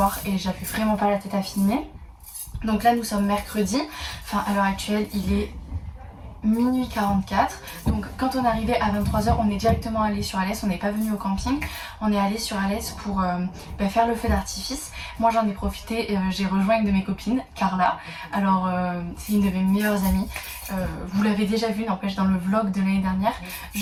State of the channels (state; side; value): identical; both; correlation 1.00